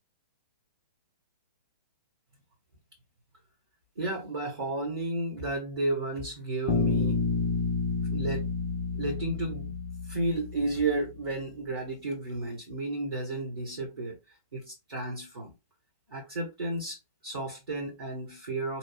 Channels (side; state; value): both; inverted; correlation -0.45